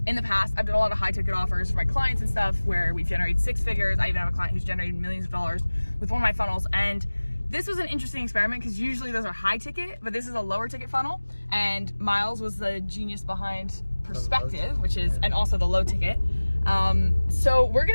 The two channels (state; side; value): inverted; both; correlation -1.00